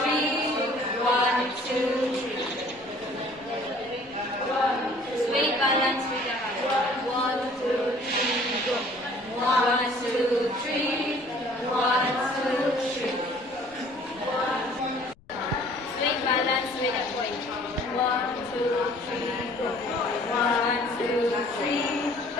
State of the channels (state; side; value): noise; left; rumble, 28 dB below the sound